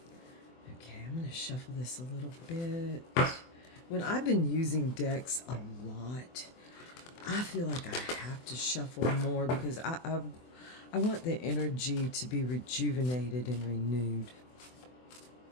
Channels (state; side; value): late; right; 24 ms